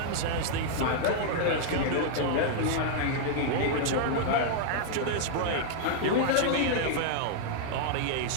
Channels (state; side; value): different; both; correlation -0.01